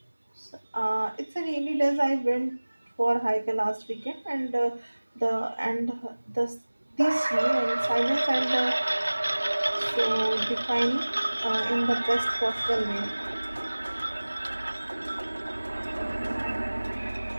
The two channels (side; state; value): both; inverted; correlation -1.00